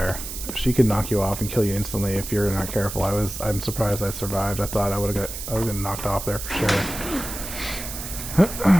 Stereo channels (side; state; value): right; noise; hiss, 8 dB below the sound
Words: She could knock you off and kill you instantly if you're not careful. I'm surprised I survived. I thought I was getting knocked off there for